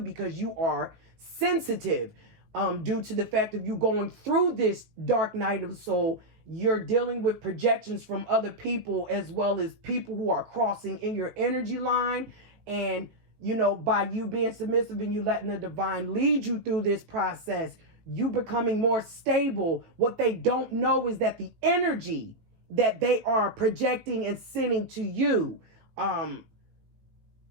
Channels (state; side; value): late; left; 18 ms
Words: because you are sensitive, due to the fact of you going through this dark night of the soul. You're dealing with projections from other people as well as people who are crossing in your energy line. And by you being submissive and you letting the divine lead you through this process, you becoming more stable. What they don't know is that the energy that they are projecting and sending to you,